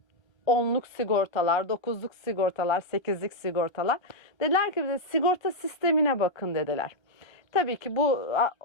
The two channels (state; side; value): late; right; 1.2 ms